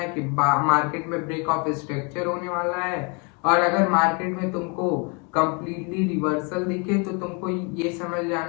है कि मार्केट में ब्रेक ऑफ स्ट्रक्चर होने वाला है। और अगर मार्केट में तुमको कंप्लीटली रिवर्सल दिखे तो तुमको ये समझ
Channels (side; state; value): right; quieter; 32.3 dB